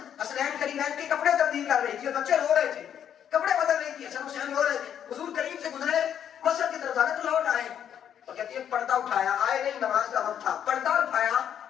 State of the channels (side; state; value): right; quieter; 9.2 dB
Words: حسنین قریبین کے کپڑے تبدیل کر رہی تھی اور بچے رو رہے تھے، کپڑے بدل رہی تھی، حسن حسین رو رہے تھے، حضور قریب سے گزرے مسجد کی طرف جانے تو لوٹ آئے اور کہتی ہے پردہ اٹھایا، آئے نہیں، نماز کا وقت تھا، پردہ اٹھایا،